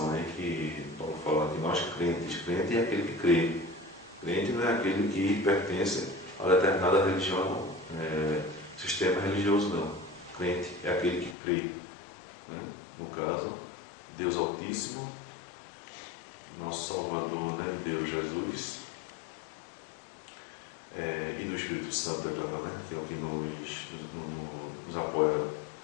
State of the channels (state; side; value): drops out; right; at 11.4 s